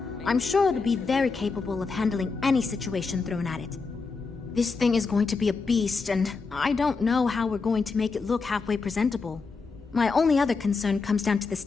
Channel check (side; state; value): right; quieter; 4.5 dB